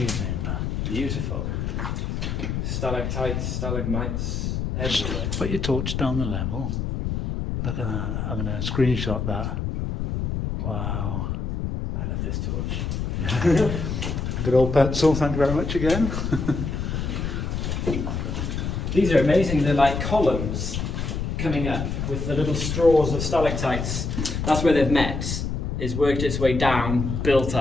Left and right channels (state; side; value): noise; left; rumble, 2 dB below the sound